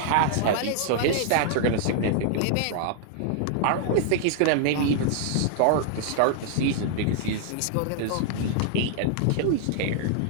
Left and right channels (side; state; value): both; different; correlation -0.01